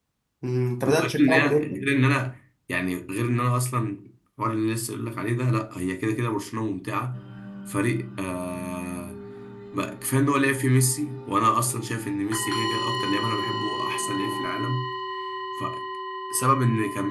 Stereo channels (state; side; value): identical; both; correlation 1.00